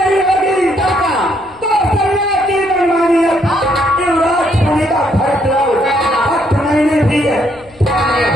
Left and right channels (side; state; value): left; noise; rumble, 28 dB below the sound